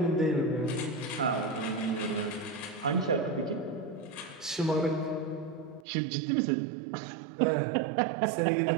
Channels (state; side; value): drops out; left; at 5.9 s